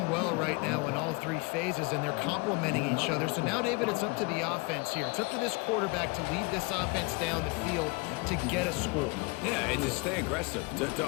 well right now in all three phases, and they're complementing each other. So now, David, it's up to the offense here. It's up to this quarterback to lead this offense down the field to get a score. Yeah, and to stay aggressive, to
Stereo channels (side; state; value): right; quieter; 28.6 dB